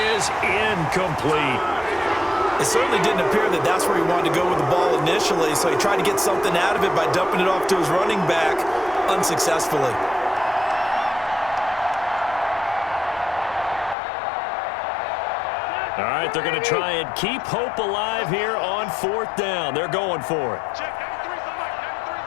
incomplete. It certainly didn't appear that that's where he wanted to go with the ball initially, so he tried to get something out of it by dumping it off to his running back unsuccessfully. All right, they're going to try and keep hope alive here on 4th down. They're going for it.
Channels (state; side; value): drops out; right; at 14.0 s